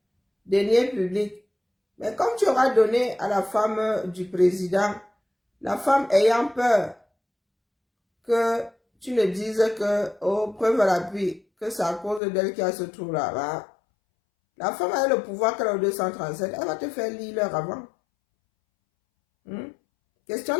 deniers publics. Mais comme tu auras donné à la femme du président, la femme ayant peur que tu ne dises que, oh, preuve à l'appui, que c'est à cause d'elle qui a ce trou-là, la femme a le pouvoir qu'elle a au 237, elle va te faire lire l'heure avant. Question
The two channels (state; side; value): drops out; right; at 12.2 s